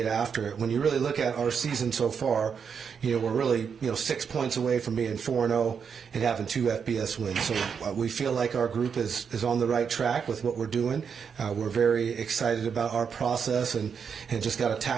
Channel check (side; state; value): left; quieter; 6.6 dB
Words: after it. When you really look at our season so far, we're really 6 points away from being 4-0 and having 2 FBS wins. So we feel like our group is on the right track with what we're doing. We're very excited about our process and just got to